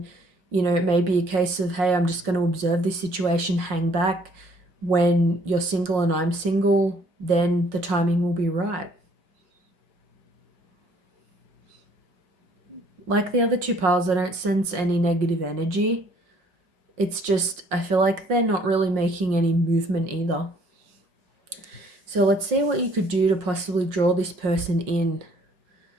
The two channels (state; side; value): late; left; 5.5 ms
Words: it may be a case of, hey, I'm just going to observe this situation, hang back. When you're single and I'm single, then the timing will be right. Like the other two piles, I don't sense any negative energy. It's just, I feel like they're not really making any movement either. So let's see what you could do to possibly draw this person in.